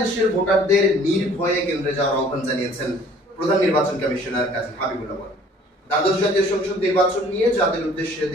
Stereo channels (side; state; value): both; normal; correlation 0.54